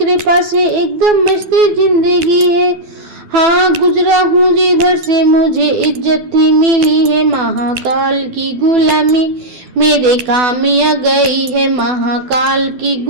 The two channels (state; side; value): late; left; 12 ms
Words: से एकदम मस्त जिंदगी है। हाँ, गुजरा हूँ जिधर से मुझे इज्जत ही मिली है। महाकाल की गुलामी मेरे काम आ गई है। महाकाल की